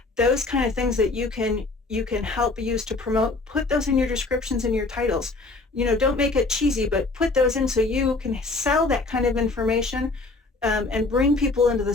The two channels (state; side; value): quieter; right; 3.5 dB